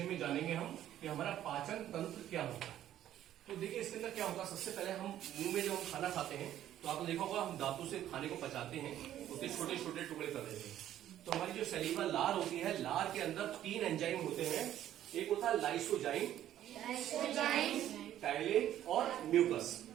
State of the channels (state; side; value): quieter; left; 12.0 dB